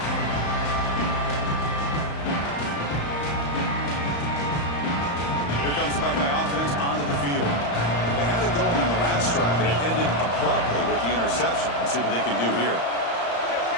Here comes the Buckeye offense onto the field. They had it going on the last drive, but it ended abruptly with the interception. Let's see what they can do here.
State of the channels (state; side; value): late; right; 35 ms